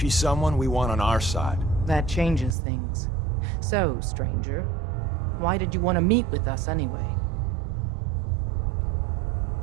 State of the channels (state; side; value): drops out; left; at 2.6 s